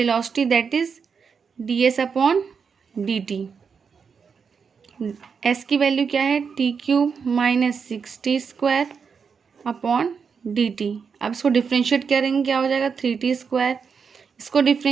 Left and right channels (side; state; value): left; quieter; 6.0 dB